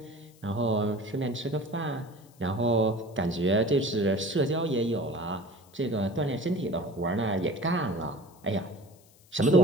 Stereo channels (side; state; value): left; noise; hiss, 29 dB below the sound